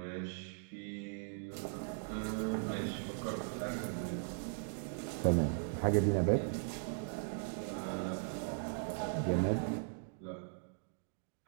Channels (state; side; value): silent; left; digital silence